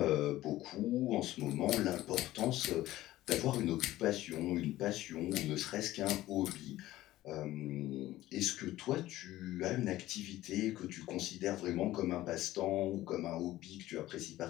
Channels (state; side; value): quieter; right; 15.6 dB